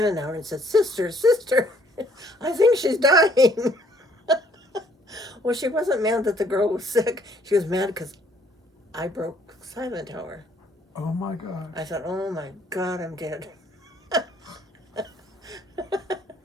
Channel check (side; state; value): both; normal; correlation 0.63